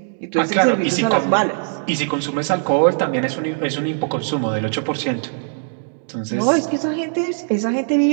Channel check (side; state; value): left; silent; digital silence